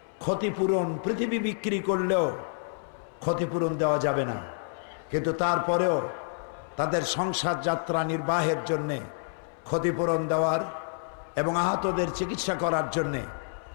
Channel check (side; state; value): right; silent; 59 dB below the other